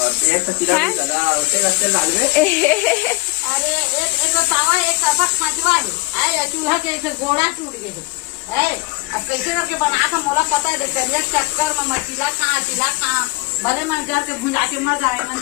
अरे एक तावा एक तरफा खांचवा है चूल्हा के एक गोड़ा टूट गए है अब कैसे रख के बना था मोला पता है देखिए चक्कर में मचीला खा भले मन घर के भुंजा के मर जाए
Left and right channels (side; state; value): right; quieter; 24.7 dB